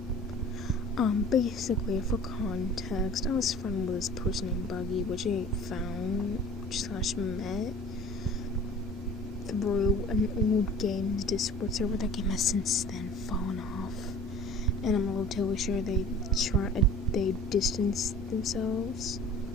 Basically, for context, I was friends with this person named Buggy, which I found / met through an old games Discord server. That game has since then fallen off, and I'm relatively sure they distanced themselves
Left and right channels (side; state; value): both; normal; correlation 0.45